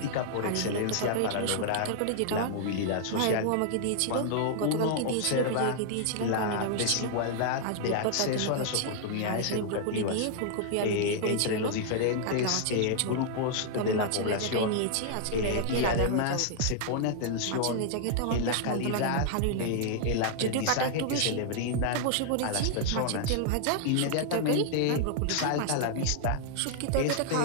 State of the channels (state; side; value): different; both; correlation -0.01